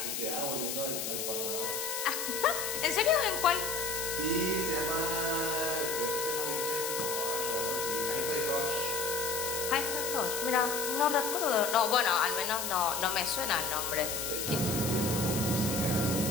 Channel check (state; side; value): noise; left; hiss, 3 dB below the sound